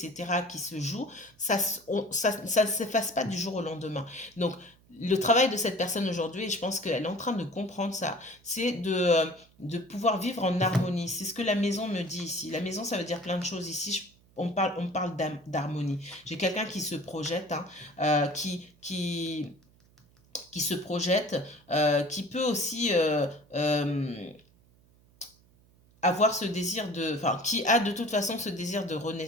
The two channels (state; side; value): noise; right; hum, 30 dB below the sound